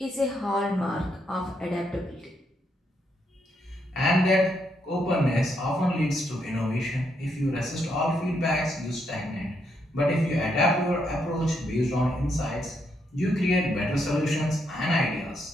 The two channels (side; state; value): both; normal; correlation 0.77